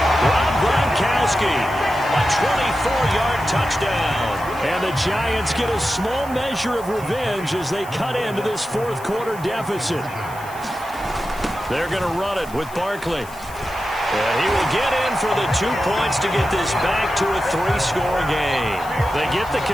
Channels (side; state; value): left; noise; hiss, 20 dB below the sound